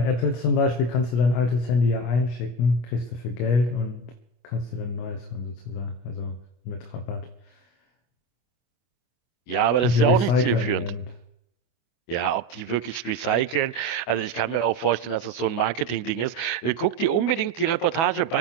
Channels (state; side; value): late; right; 24 ms